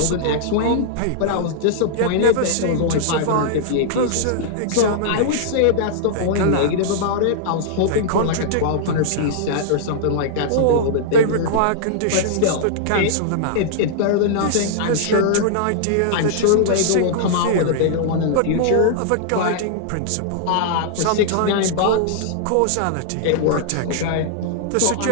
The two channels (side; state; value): both; different; correlation -0.02